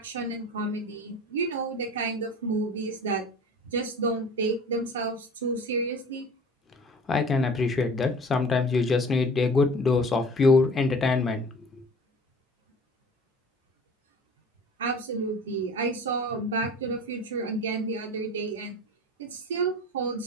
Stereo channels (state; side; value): normal; both; correlation 0.43